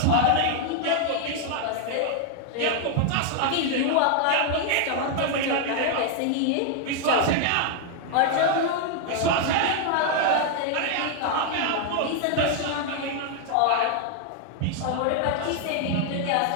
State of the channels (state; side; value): different; both; correlation 0.00